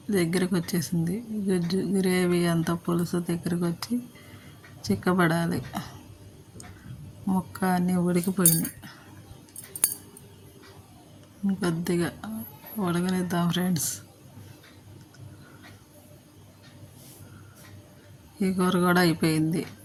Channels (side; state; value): both; identical; correlation 1.00